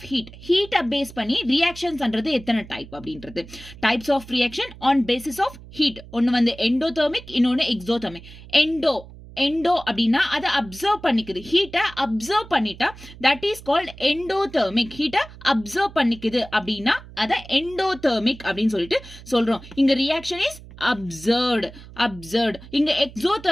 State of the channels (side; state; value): right; noise; hum, 18 dB below the sound